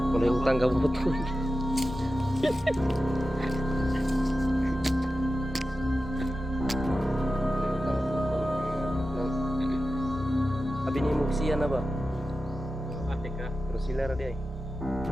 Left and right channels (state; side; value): normal; both; correlation 0.93